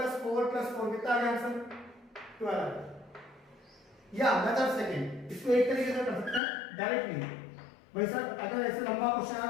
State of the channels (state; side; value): drops out; right; at 6.4 s